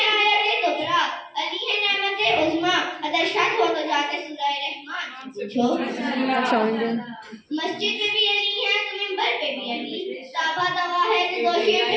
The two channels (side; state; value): both; identical; correlation 1.00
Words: आयत कुबरा, अली है नेमत उज़्मा, अगर शक हो तो जाके सूरह रहमान से पूछो। मस्जिद में भी अली है तो मिंबर पे भी अली, साबा दवा है तो गोशे पे